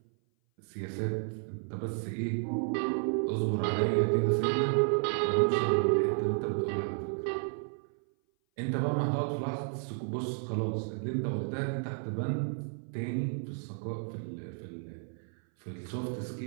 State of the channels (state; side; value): silent; left; 56 dB below the other